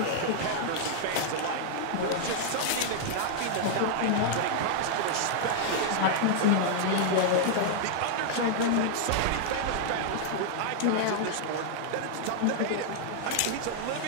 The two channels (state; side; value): different; both; correlation -0.01